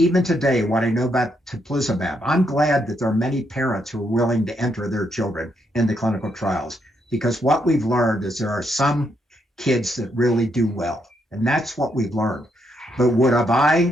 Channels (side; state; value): both; normal; correlation 0.77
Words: today, what I know about teplizumab, I'm glad that there are many parents who are willing to enter their children into clinical trials, because what we've learned is there are some kids that really do well, and that's what we've learned. But would have